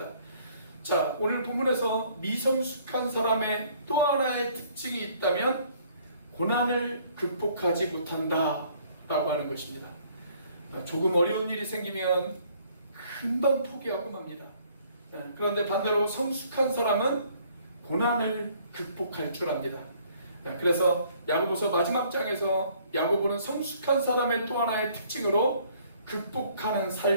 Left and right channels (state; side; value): inverted; both; correlation -0.61